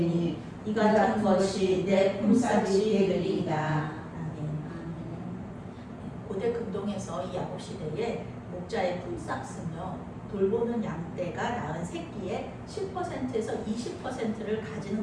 이 같은 것이 내 품삯이 되리이다. 고대 근동에서 이 야곱 시대에 목자의 품삯은요, 돌보는 양떼가 낳은 새끼의 10%에서 20%를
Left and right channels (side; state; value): both; identical; correlation 1.00